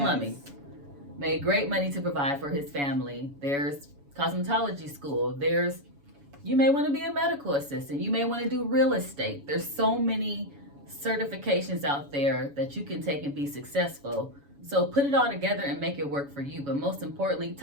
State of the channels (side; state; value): left; late; 7.1 ms